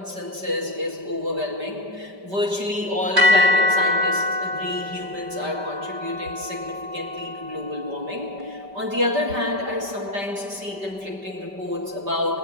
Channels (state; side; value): late; left; 5.1 ms